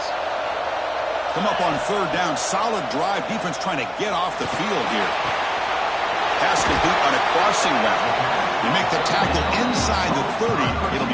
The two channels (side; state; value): both; identical; correlation 1.00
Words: Come up on third down. Solid drive. Defense trying to get off the field here. Pass complete on a crossing route. They make the tackle inside the 30. It'll